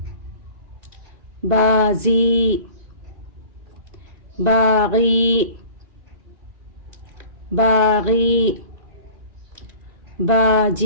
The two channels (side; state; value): left; late; 2.4 ms